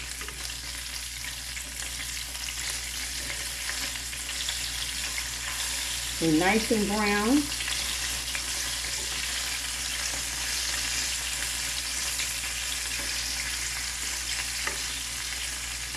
They're nice and brown.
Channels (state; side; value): identical; both; correlation 1.00